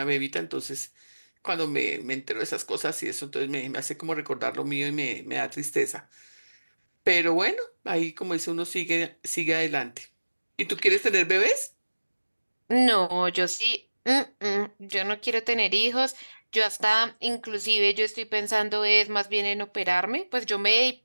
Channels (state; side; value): inverted; both; correlation -1.00